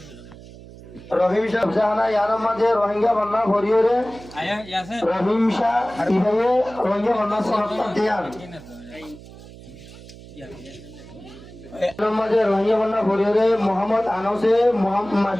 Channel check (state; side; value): noise; right; hum, 18 dB below the sound